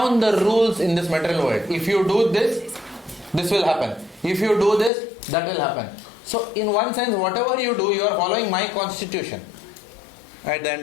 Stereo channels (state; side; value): drops out; right; at 4.9 s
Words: the rules in this material world. If you do this, this will happen. If you do this, that will happen. So in one sense, whatever you do, you are following my constitution at the